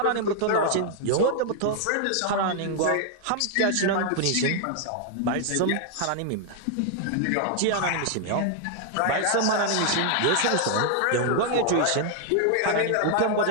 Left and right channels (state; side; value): different; both; correlation 0.00